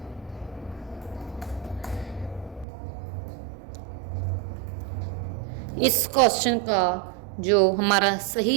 इस क्वेश्चन का जो हमारा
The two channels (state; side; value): drops out; left; at 2.7 s